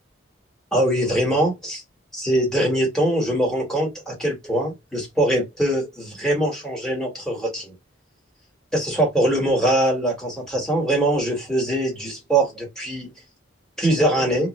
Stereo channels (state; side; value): normal; both; correlation 0.54